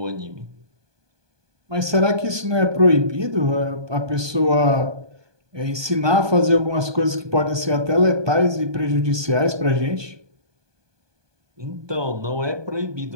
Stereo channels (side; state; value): left; late; 1.2 ms